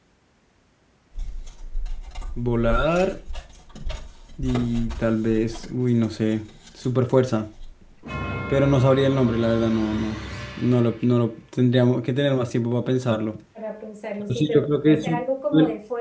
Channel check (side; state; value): both; identical; correlation 1.00